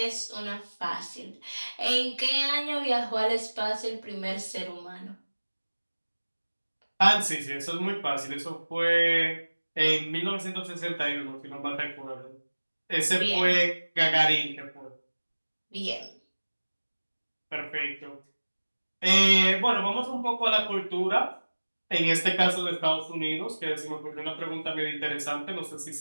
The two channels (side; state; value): both; inverted; correlation -1.00